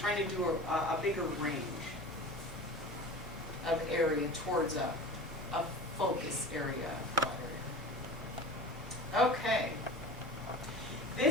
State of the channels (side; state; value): both; normal; correlation 0.36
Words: to do a bigger range of area towards a focus area. Okay.